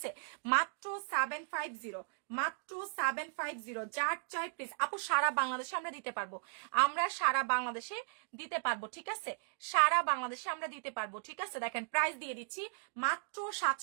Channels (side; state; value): left; silent; digital silence